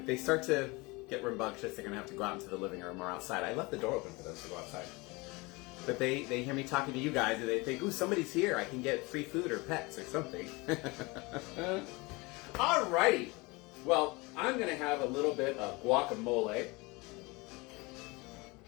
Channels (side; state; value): right; quieter; 25.1 dB